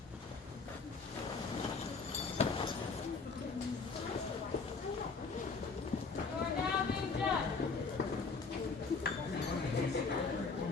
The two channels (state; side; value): quieter; right; 4.5 dB